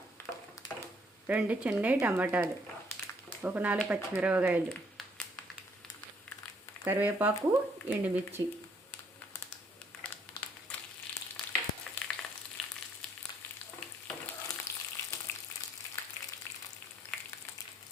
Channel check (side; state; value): both; normal; correlation 0.67